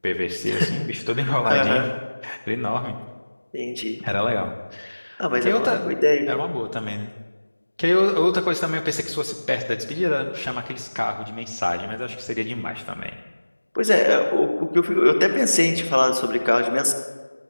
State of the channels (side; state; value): both; inverted; correlation -1.00